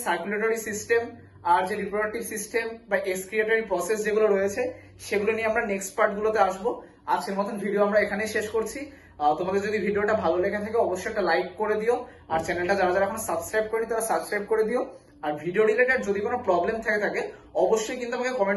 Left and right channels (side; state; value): both; identical; correlation 1.00